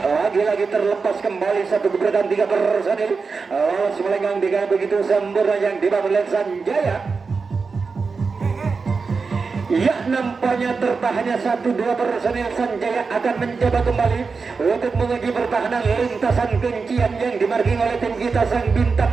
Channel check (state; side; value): quieter; left; 4.7 dB